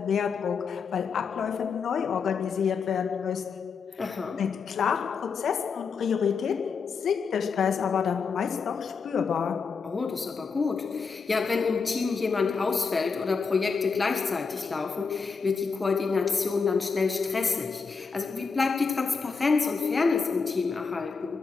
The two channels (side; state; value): right; quieter; 5.2 dB